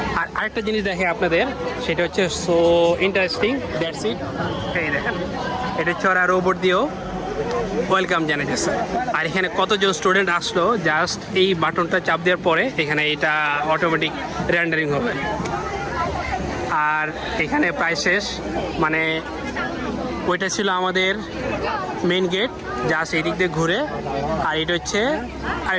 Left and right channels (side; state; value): both; identical; correlation 1.00